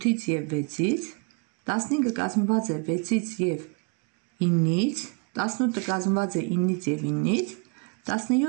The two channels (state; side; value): quieter; left; 35.8 dB